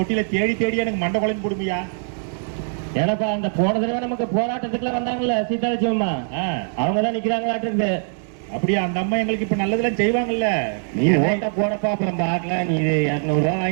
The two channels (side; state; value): left; silent; digital silence